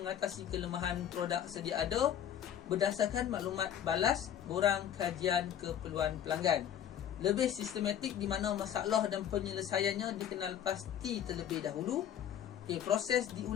kelemahan produk sedia ada berdasarkan maklumat balas borang kajian keperluan pelanggan. Lebih sistematik di mana masalah dan penyelesaiannya dikenal pasti terlebih dahulu. Okey, proses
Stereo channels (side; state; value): right; quieter; 10.0 dB